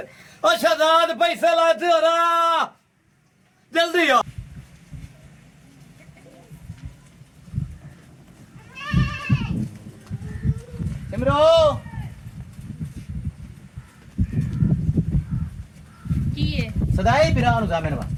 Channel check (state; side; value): identical; both; correlation 1.00